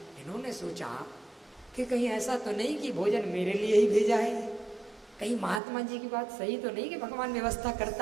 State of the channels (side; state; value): left; drops out; at 5.6 s